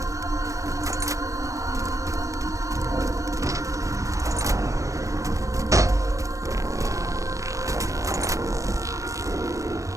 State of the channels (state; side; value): late; left; 0.15 ms